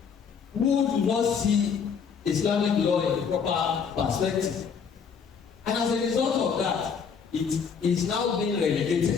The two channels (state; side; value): quieter; right; 6.4 dB